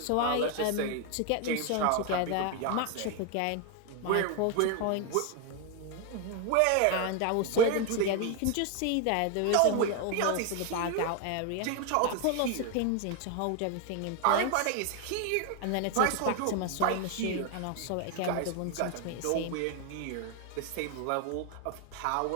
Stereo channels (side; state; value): both; different; correlation 0.01